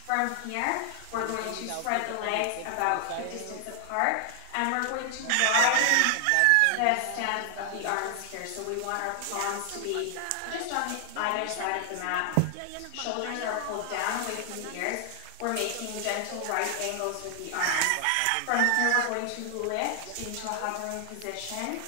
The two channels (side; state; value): both; different; correlation 0.00